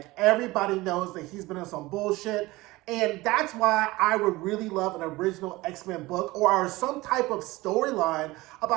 everybody knows that he's been on some bullshit. And that's why I would really love an original X-Men book or some type of storyline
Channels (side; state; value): left; quieter; 20.2 dB